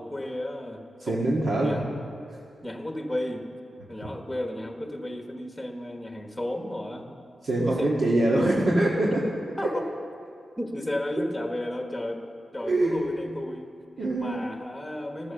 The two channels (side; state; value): both; normal; correlation 0.91